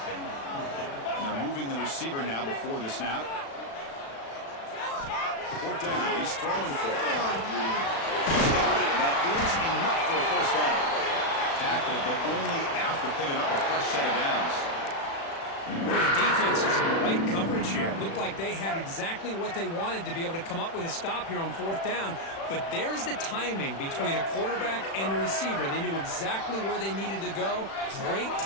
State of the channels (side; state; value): right; late; 36 ms